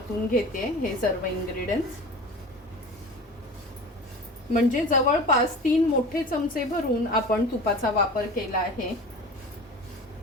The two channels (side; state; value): both; normal; correlation 0.36